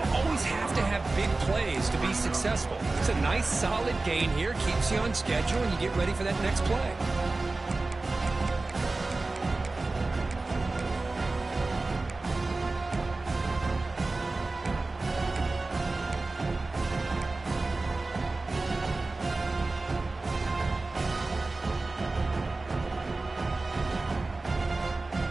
always have to have big plays to be successful. It's a nice, solid gain here, keeps you on schedule, and you get ready for that next play.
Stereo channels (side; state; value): left; quieter; 3.3 dB